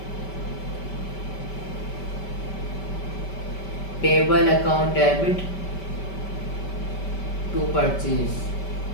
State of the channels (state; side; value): late; right; 5.2 ms